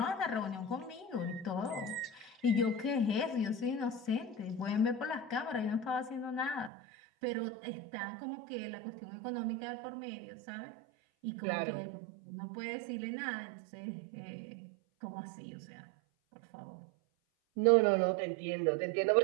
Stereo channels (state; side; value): drops out; left; at 6.7 s